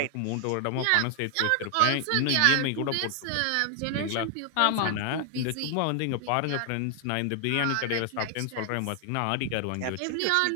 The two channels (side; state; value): both; different; correlation 0.00